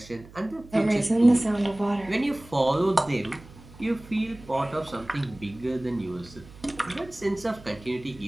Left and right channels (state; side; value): noise; right; hum, 20 dB below the sound